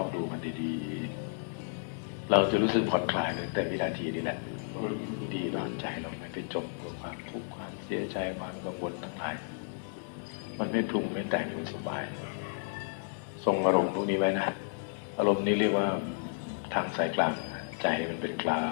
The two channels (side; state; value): right; silent; digital silence